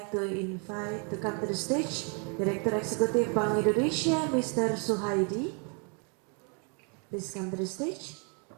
to invite to come to the stage Director Eksekutif Bank Indonesia, Mr. Suhaidi. Please come to the stage.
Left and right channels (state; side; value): quieter; left; 38.2 dB